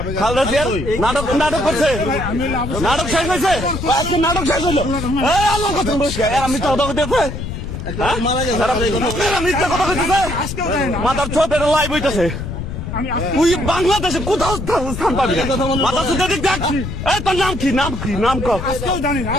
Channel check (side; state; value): left; noise; rumble, 6 dB below the sound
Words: খালেদা জিয়ার নাটক করছে। নাটক শেষ হয়েছে। নাটক শেষ হলো। এই আল্লাহ কথা বলছে আমি তো মিথ্যা কথা কইতেছে। মাথার ছোট এটা লাইভ হইতেছে। তুই বাংলাদেশে কোথাও স্থান পাবি না। মাথা সুদে দিক দেখ। এই তোর নাম কি? নাম কি? নাম ক